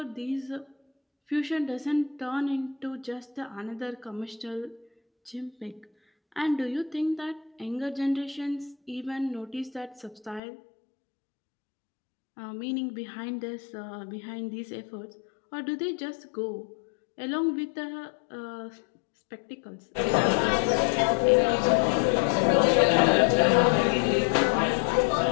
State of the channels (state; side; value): drops out; right; at 10.4 s